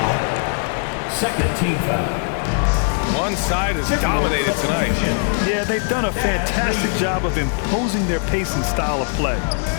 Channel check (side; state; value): right; silent; 55 dB below the other